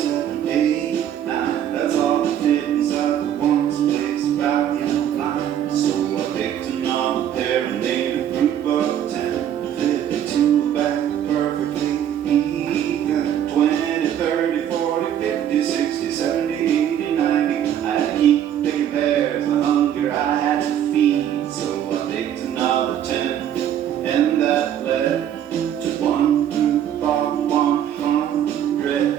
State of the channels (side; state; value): left; quieter; 10.2 dB